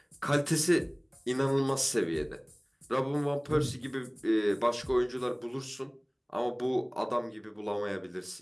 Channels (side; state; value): both; identical; correlation 1.00